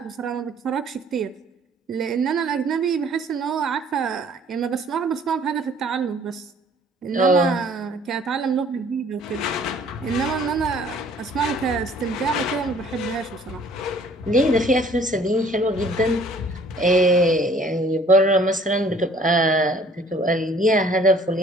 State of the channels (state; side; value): normal; both; correlation 0.55